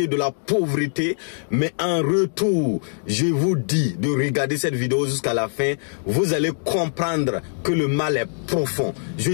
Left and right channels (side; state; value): right; silent; digital silence